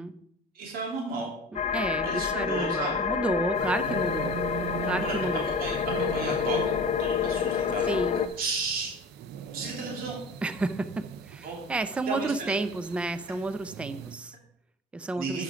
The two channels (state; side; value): normal; both; correlation 0.37